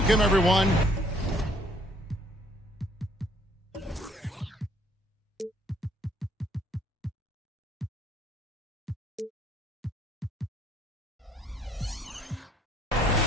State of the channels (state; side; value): normal; both; correlation 0.62